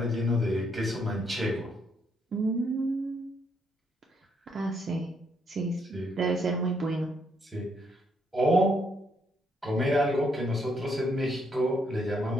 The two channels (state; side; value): normal; both; correlation 0.74